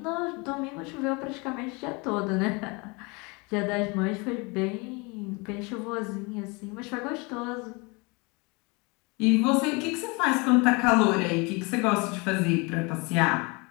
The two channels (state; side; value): quieter; right; 28.3 dB